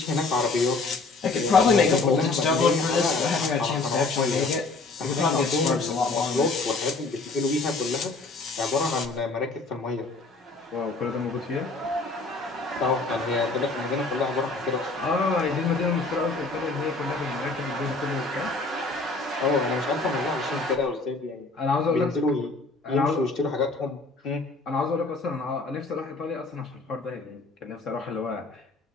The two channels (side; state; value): right; quieter; 3.6 dB